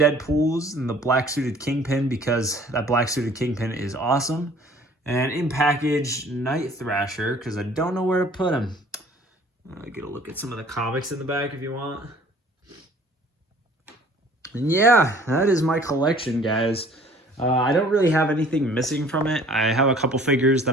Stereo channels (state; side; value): normal; both; correlation 0.53